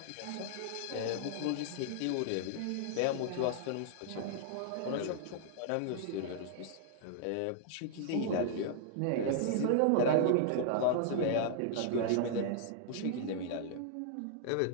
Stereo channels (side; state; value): both; different; correlation -0.01